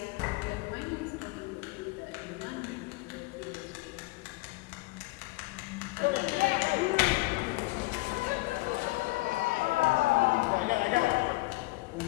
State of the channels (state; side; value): quieter; right; 22.0 dB